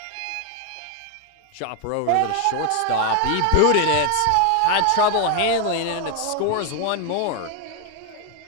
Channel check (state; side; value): different; both; correlation 0.01